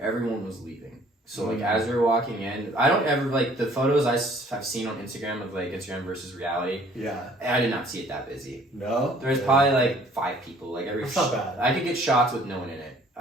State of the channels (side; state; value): both; normal; correlation 0.56